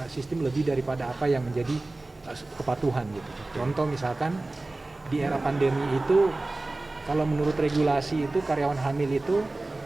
sistem lebih daripada apa yang menjadi kepatuhan gitu. Contoh misalkan di era pandemi itu, kalau menurut regulasi itu karyawan hamil itu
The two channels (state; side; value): quieter; left; 3.0 dB